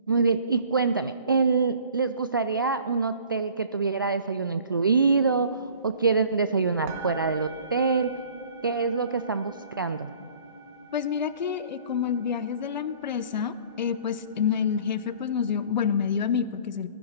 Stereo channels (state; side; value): inverted; both; correlation -0.50